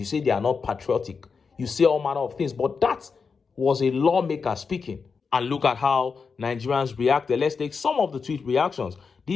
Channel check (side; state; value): right; quieter; 5.3 dB